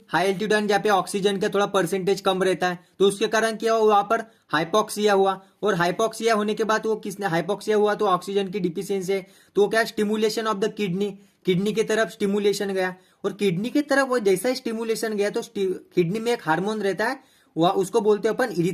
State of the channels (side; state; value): both; identical; correlation 1.00